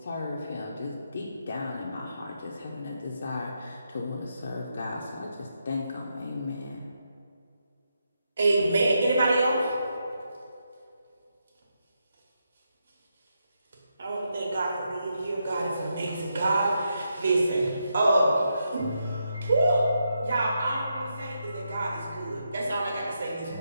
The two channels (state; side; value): inverted; both; correlation -0.83